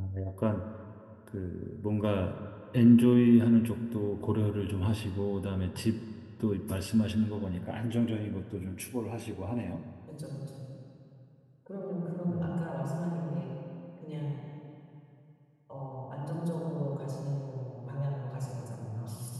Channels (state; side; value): identical; both; correlation 1.00